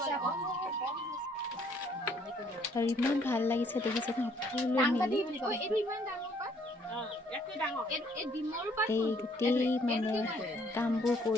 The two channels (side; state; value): both; normal; correlation 0.64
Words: আৰু ইমান ভাল লাগিছে দেখিছে সকলোৱে মিলি এই গোটেই মানে কামবোৰ